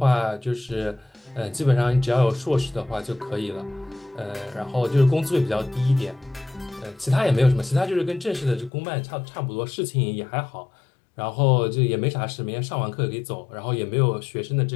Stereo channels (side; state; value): right; drops out; at 8.7 s